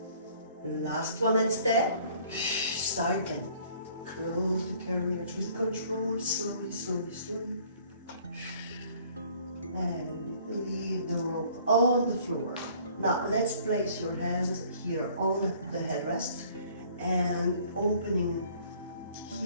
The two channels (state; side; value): inverted; both; correlation -0.56